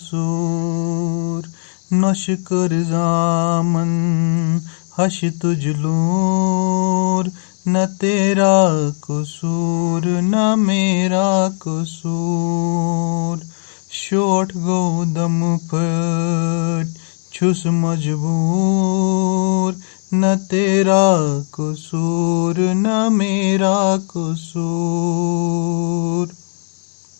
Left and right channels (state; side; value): silent; right; 68 dB below the other